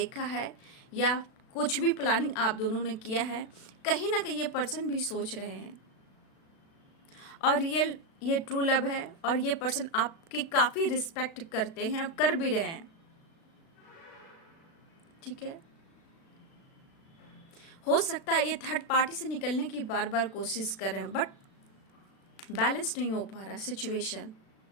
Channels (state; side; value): late; right; 36 ms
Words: है, या कुछ भी प्लानिंग आप दोनों ने किया है, कहीं ना कहीं ये पर्सन भी सोच रहे हैं। और रियल ये ट्रू लव है, और ये पर्सन आपकी काफ़ी रिस्पेक्ट करते हैं और कर भी रहे हैं। ठीक है, हो सकता है ये थर्ड पार्टी से निकलने की बार बार कोशिश कर रहे हैं, बट बैलेंस नहीं हो पा रहा सिचुएशन।